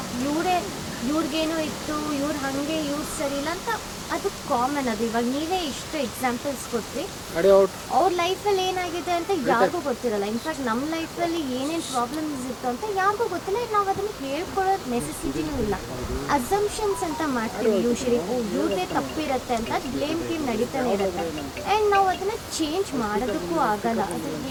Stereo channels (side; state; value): both; identical; correlation 1.00